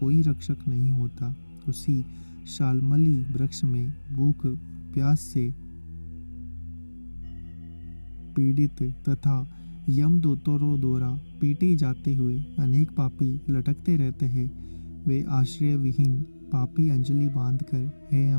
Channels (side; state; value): both; inverted; correlation -1.00